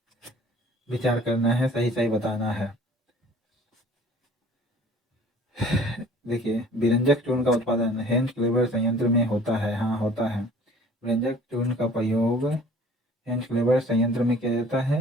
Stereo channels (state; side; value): normal; both; correlation 0.50